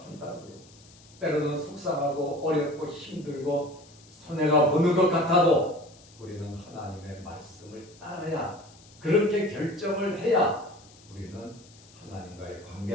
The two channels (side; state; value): left; noise; hiss, 25 dB below the sound